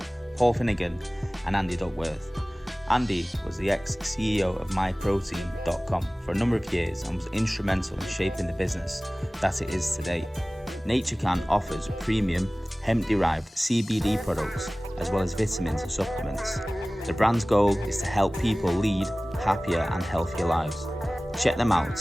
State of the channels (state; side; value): normal; both; correlation 0.98